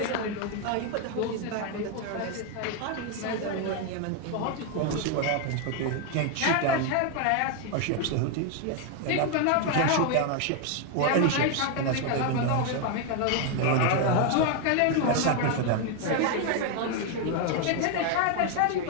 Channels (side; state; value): both; different; correlation 0.01